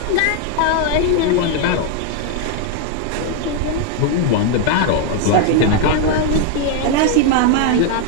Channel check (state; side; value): different; both; correlation 0.00